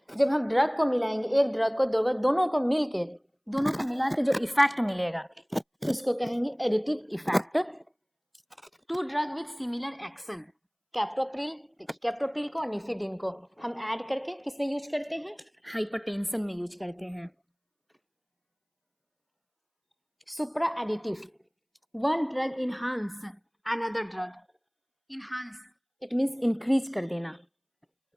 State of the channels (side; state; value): both; identical; correlation 1.00